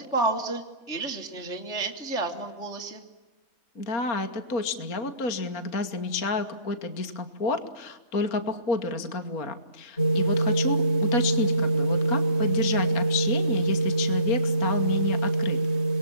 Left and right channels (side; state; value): right; late; 4.2 ms